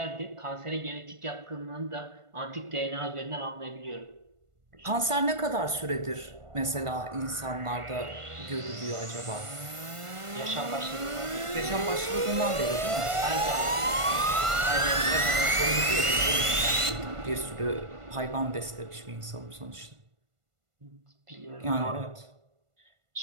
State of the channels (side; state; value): left; late; 1.5 ms